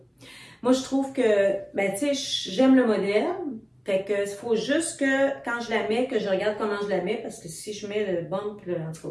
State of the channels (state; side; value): identical; both; correlation 1.00